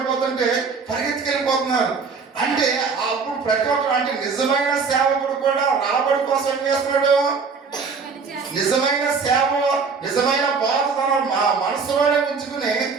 పరిగెత్తుకెళ్ళిపోతున్నారు. అంటే అప్పుడు ప్రతి ఒక్కరు అంటే నిజమైన సేవకుడు కూడా రాబడి కోసం ఏం చేస్తున్నాడు, నిజమైన సేవ, నిజమైన బాధ తన మనసులోనే ఉంచుకుని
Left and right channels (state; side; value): quieter; left; 5.1 dB